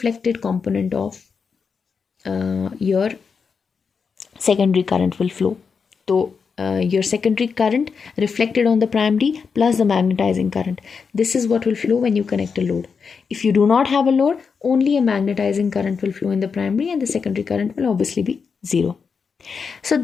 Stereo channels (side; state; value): right; quieter; 5.7 dB